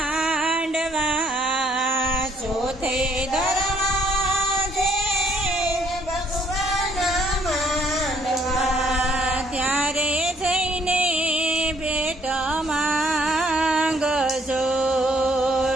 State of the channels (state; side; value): normal; both; correlation 0.65